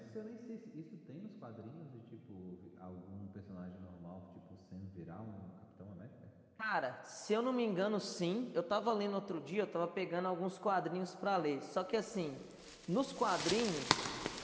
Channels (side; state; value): both; identical; correlation 1.00